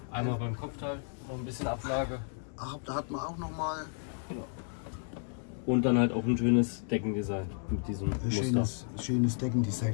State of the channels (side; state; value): right; silent; 56 dB below the other